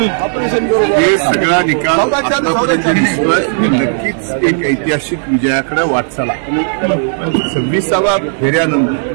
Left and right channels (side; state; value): left; silent; digital silence